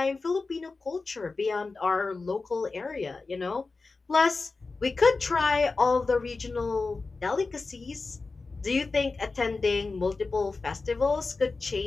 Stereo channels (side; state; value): right; quieter; 3.9 dB